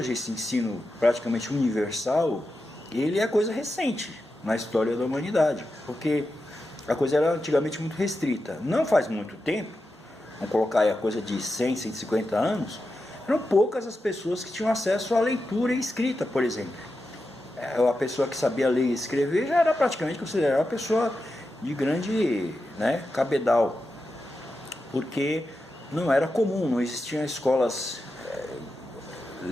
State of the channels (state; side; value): normal; both; correlation 0.89